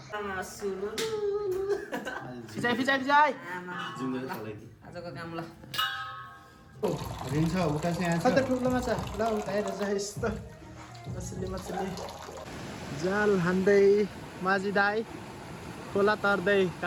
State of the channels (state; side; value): identical; both; correlation 1.00